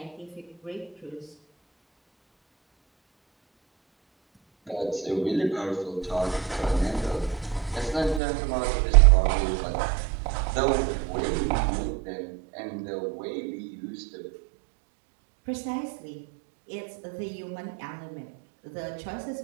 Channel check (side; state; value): left; drops out; at 8.2 s